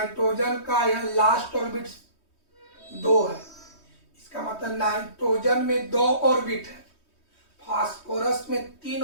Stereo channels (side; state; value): right; late; 3.2 ms